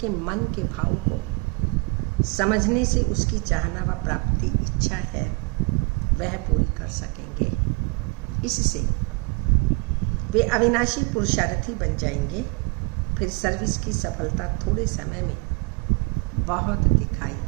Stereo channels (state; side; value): quieter; left; 29.5 dB